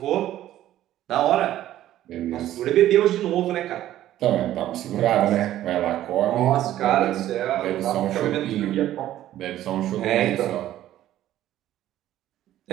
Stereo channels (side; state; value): left; quieter; 13.1 dB